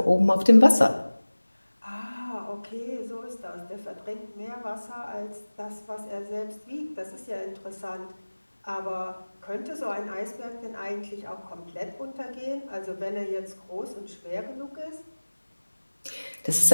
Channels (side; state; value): both; inverted; correlation -1.00